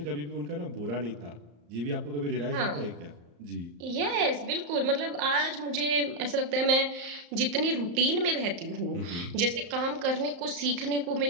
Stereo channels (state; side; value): late; left; 34 ms